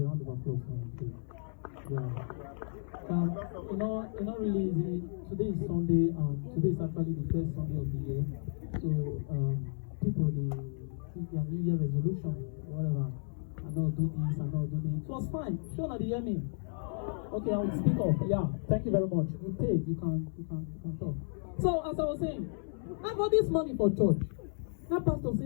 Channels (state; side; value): silent; right; 56 dB below the other